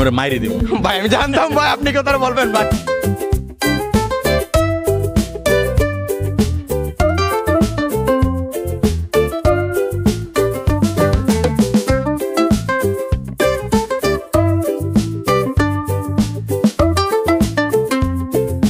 ওরা মাইরে দেবো। ভাই আমি জানতাম ভাই আপনি কথা বলবেন ভাই।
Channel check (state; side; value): identical; both; correlation 1.00